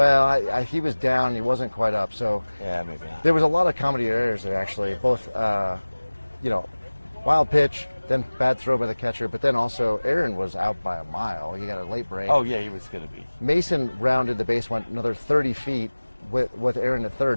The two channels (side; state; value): both; inverted; correlation -1.00